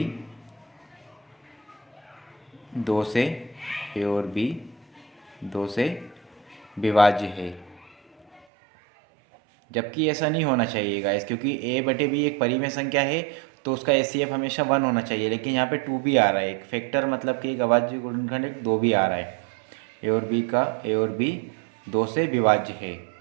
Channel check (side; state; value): left; drops out; at 8.5 s